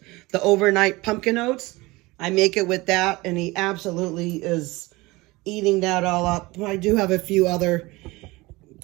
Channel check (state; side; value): quieter; left; 21.9 dB